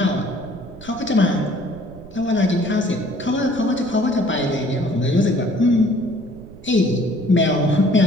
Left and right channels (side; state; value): right; noise; rumble, 18 dB below the sound